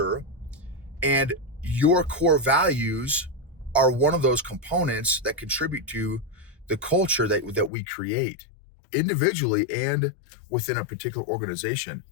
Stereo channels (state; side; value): drops out; right; at 7.7 s